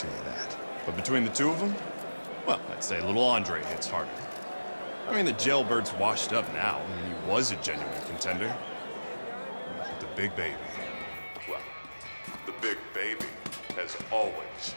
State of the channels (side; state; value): both; inverted; correlation -1.00